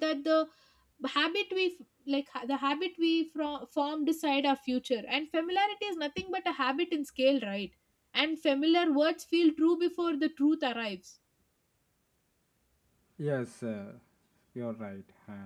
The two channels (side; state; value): both; identical; correlation 1.00